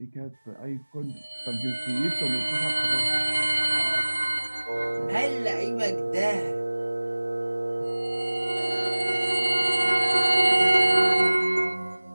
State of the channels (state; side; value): inverted; both; correlation -1.00